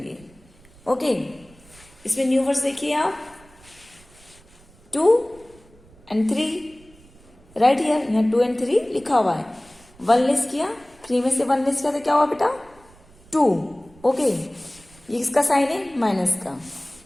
ओके, इसमें न्यू वर्ड्स देखिए आप. 2 and 3 राइट हियर. यहाँ 2 and 3 लिखा हुआ है. 1 लेस किया, 3 में से 1 लेस किया तो क्या हुआ बेटा? 2. ओके, ये किसका साइन है? माइनस का.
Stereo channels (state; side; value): noise; right; rumble, 26 dB below the sound